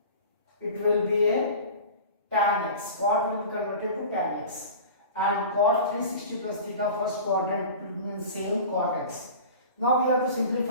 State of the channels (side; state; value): both; inverted; correlation -0.37